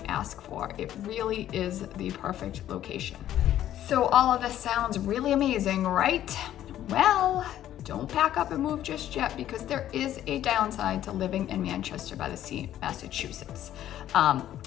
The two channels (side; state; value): right; quieter; 12.1 dB